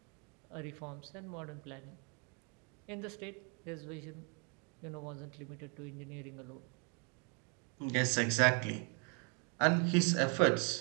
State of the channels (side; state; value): left; quieter; 37.5 dB